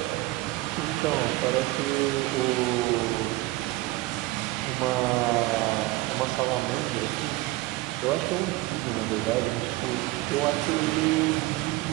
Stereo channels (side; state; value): left; quieter; 19.2 dB